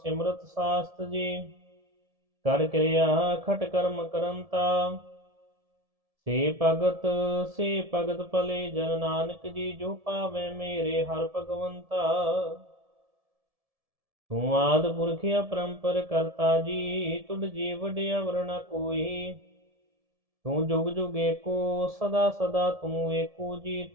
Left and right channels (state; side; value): late; left; 1.7 ms